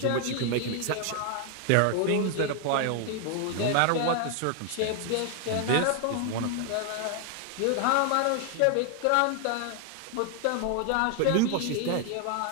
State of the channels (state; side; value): different; both; correlation 0.00